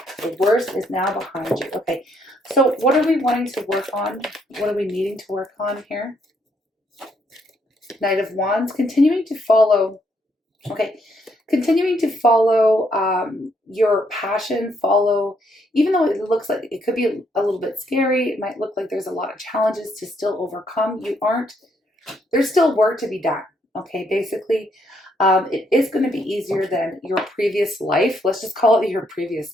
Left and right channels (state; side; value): normal; both; correlation 0.73